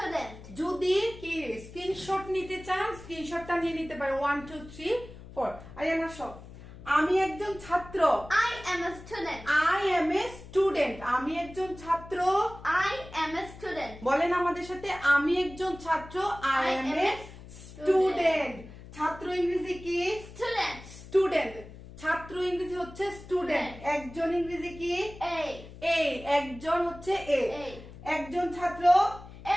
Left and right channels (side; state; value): left; noise; hum, 16 dB below the sound